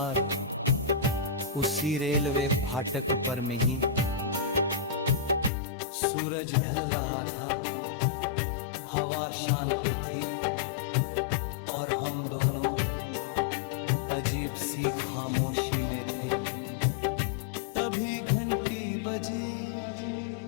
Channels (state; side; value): drops out; right; at 5.5 s